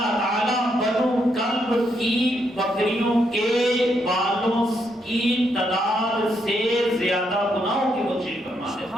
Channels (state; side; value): normal; both; correlation 0.77